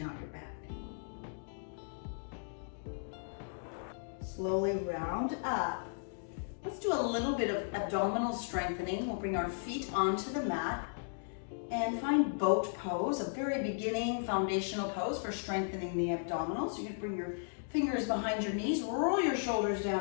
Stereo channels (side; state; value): right; silent; digital silence